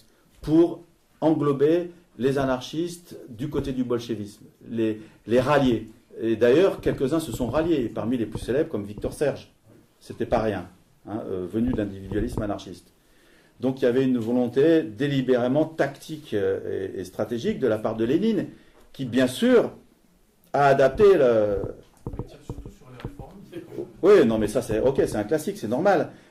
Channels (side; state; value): both; identical; correlation 1.00